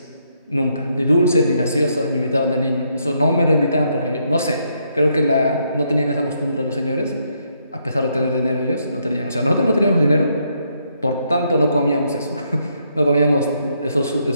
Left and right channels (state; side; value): inverted; both; correlation -0.75